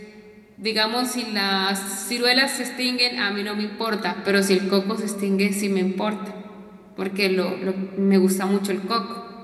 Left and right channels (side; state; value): both; identical; correlation 1.00